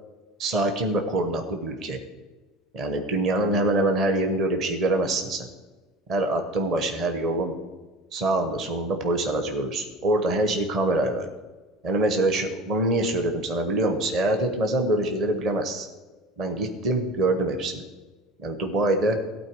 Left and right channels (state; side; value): normal; both; correlation 0.36